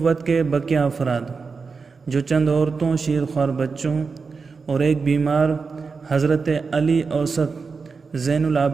کے بقیہ افراد جو چند عورتوں، شیرخوار بچوں اور ایک بیمار حضرت علی اوسط زین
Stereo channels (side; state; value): left; quieter; 4.9 dB